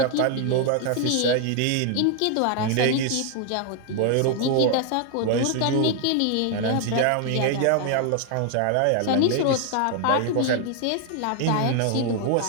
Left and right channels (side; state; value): both; different; correlation 0.00